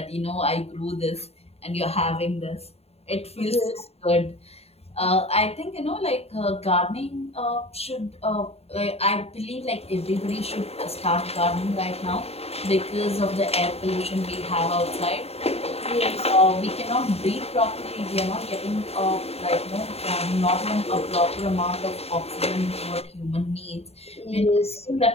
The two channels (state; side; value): late; right; 0.30 ms